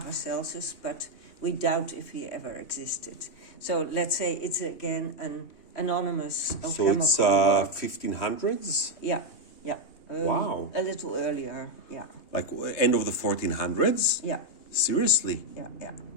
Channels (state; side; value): late; right; 2.8 ms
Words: but we doubt if he ever existed. So let's say it's again an anonymous alchemical So work. it's 1500s? Yeah. Wow. A little earlier, yeah. Like end of the 1400s? Yeah. Seriously? Yeah.